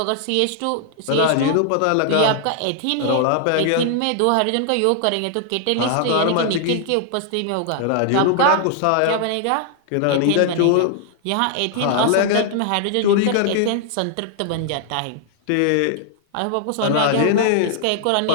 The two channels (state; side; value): different; both; correlation 0.00